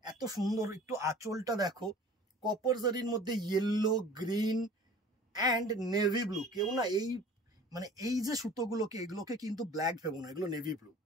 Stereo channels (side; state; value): both; normal; correlation 0.45